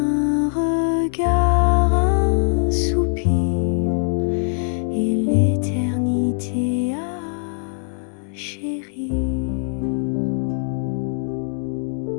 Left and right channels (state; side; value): silent; right; digital silence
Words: regard, un soupir, et l'éternité à chérir.